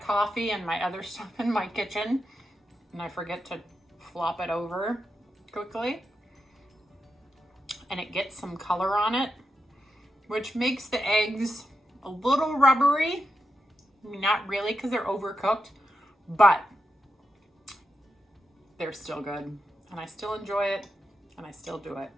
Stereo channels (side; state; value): both; normal; correlation 0.86